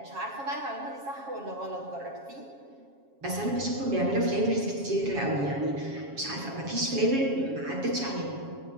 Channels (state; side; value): late; left; 7.3 ms